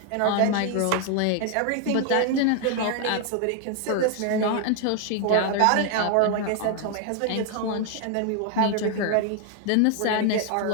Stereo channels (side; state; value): both; different; correlation 0.00